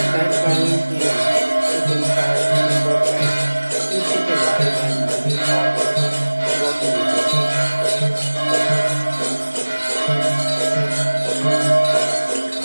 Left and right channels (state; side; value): inverted; both; correlation -1.00